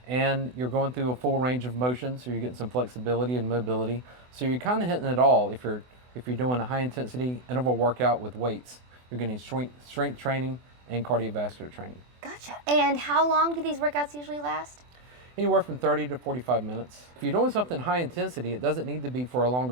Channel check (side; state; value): left; late; 24 ms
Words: And you're going through a full range of motion, so you're getting some flexibility and mobility. So you're kind of hitting it all if you're doing a high-intensity interval workout with weights. You're getting strength training and cardiovascular training. Gotcha. And how long do these workouts usually last? Anywhere from 30 to 45 minutes. If you're doing something high intensity, it doesn't need to be for a